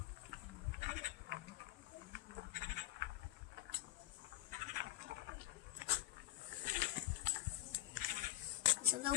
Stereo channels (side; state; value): right; quieter; 15.9 dB